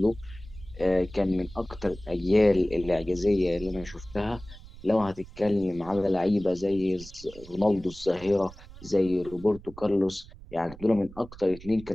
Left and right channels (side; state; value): right; noise; rumble, 17 dB below the sound